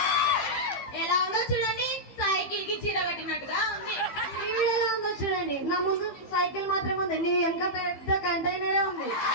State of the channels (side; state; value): right; late; 15 ms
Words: ఎలా ఉందో చూడండి, సైకిల్ కి చీర కట్టినట్టుగా ఉంది. ఈవిడ ఎలా ఉందో చూడండి, నా ముందు సైకిల్ మాత్రమే ఉంది, నీ వెనక పెద్ద కంటైనరే ఉంది.